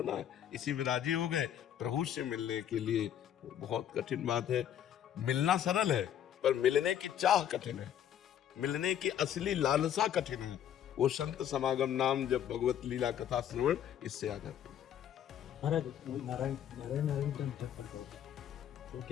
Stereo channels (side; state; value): right; quieter; 10.1 dB